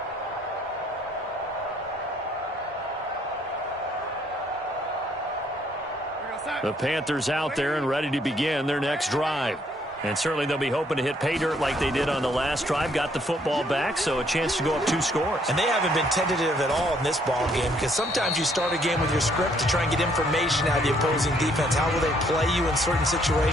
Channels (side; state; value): both; normal; correlation 0.67